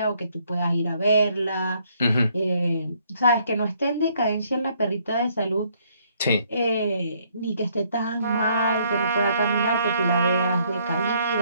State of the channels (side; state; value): both; inverted; correlation -0.68